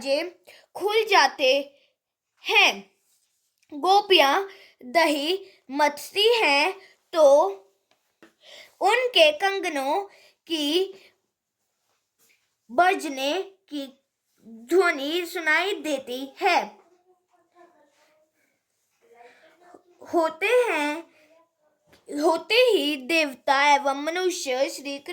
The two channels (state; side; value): identical; both; correlation 1.00